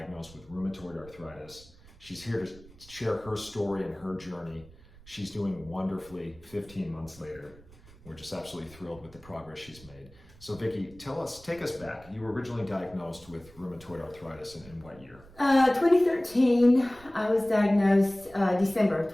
with rheumatoid arthritis. She's here to share her story and her journey. She's doing wonderfully 15 months later. We're just absolutely thrilled with the progress she's made. So Vicki, take us back. You were originally diagnosed with rheumatoid arthritis in what year? 2013, I was diagnosed December of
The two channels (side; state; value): right; noise; rumble, 22 dB below the sound